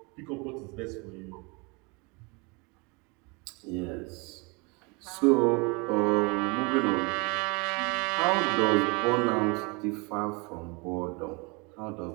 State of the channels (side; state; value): left; quieter; 29.3 dB